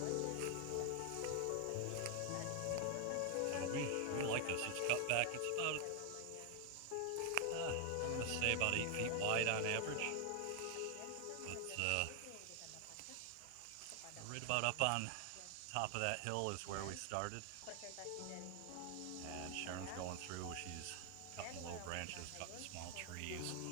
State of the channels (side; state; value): both; different; correlation 0.00